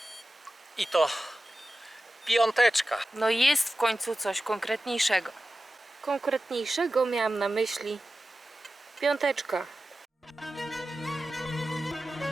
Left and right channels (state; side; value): normal; both; correlation 0.94